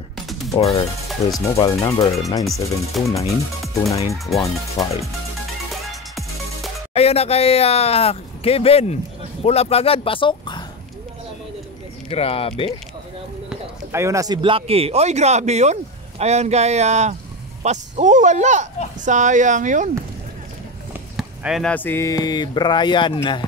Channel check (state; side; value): normal; both; correlation 0.20